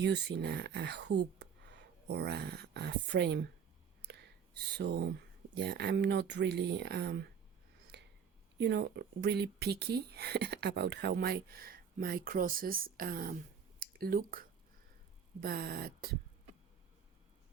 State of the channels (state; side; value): quieter; left; 7.1 dB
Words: a hoop or a frame. So yeah, I'm not really really picky about how my crosses look, but